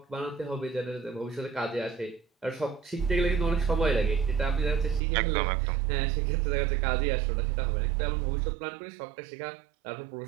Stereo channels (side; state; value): left; drops out; at 5.0 s